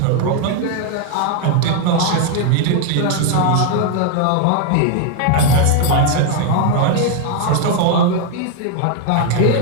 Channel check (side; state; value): both; different; correlation 0.01